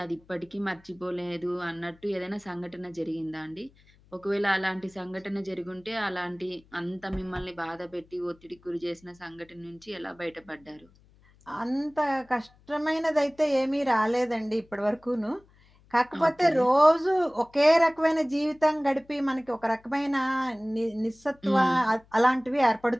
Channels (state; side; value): noise; left; hum, 29 dB below the sound